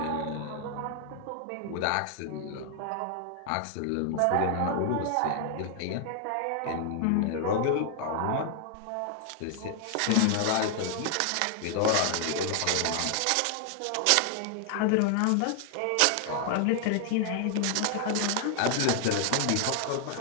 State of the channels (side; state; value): both; different; correlation 0.00